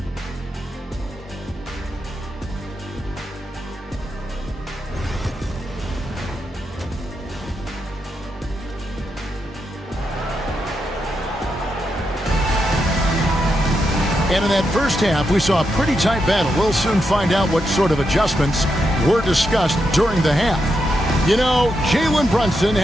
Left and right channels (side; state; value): both; normal; correlation 0.84